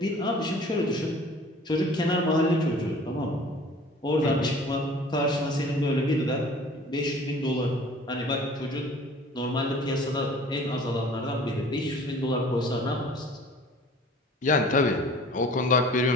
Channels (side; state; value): both; normal; correlation 0.48